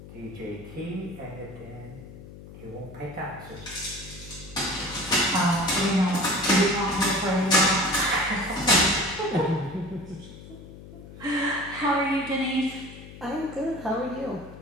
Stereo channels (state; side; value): noise; left; hum, 16 dB below the sound